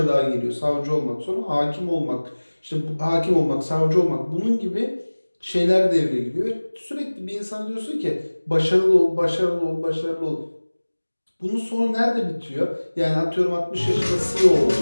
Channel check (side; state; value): both; inverted; correlation -1.00